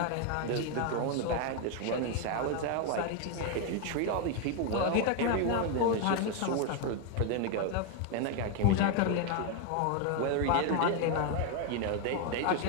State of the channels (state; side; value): different; both; correlation 0.01